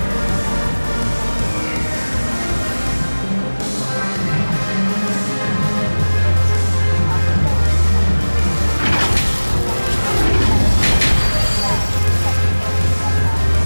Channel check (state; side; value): inverted; both; correlation -1.00